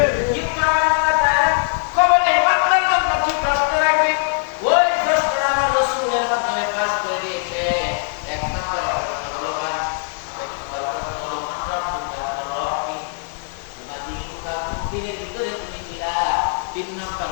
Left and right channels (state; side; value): silent; right; digital silence